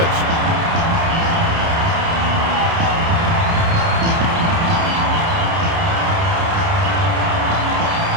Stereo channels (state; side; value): late; left; 30 ms